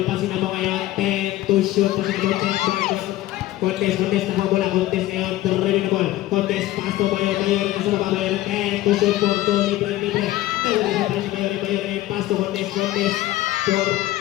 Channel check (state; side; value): quieter; right; 15.7 dB